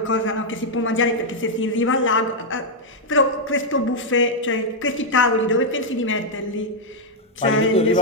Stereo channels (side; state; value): both; normal; correlation -0.02